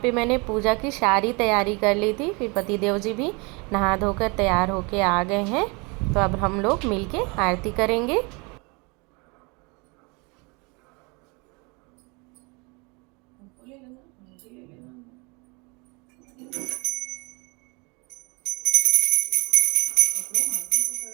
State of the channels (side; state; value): left; quieter; 29.4 dB